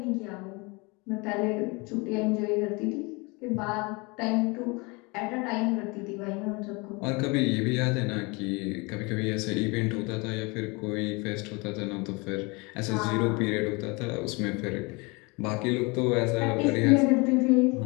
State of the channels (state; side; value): quieter; right; 27.5 dB